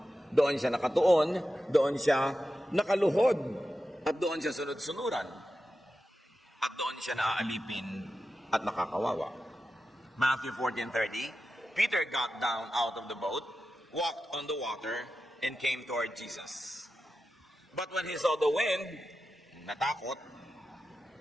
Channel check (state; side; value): normal; both; correlation 0.91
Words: Doon siya nakatuon, doon siya nakaluhod, at doon siya sunod-sunuran. At doon siya naaalipin at nakakawawa. Matthew 14:30, Peter got down out of the boat, walked on the water, and came toward Jesus. But when he saw the wind, natakot,